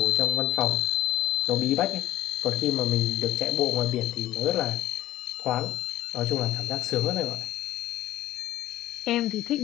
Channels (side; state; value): right; quieter; 14.4 dB